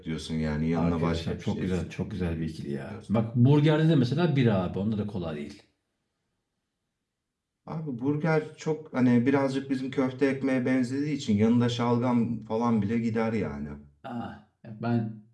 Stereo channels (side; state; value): both; identical; correlation 1.00